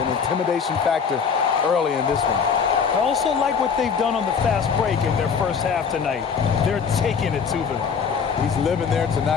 intimidation factor early in this one. I also like what they've done on the fast break in their first half tonight. They're taking it to them. He's living there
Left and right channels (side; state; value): right; quieter; 6.3 dB